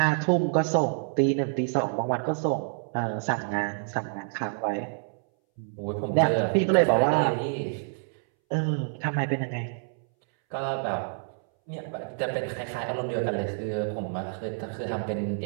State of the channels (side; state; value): left; silent; 60 dB below the other